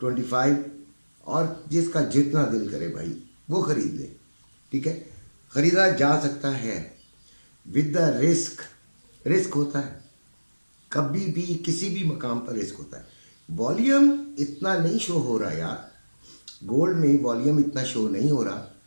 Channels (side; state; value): both; inverted; correlation -1.00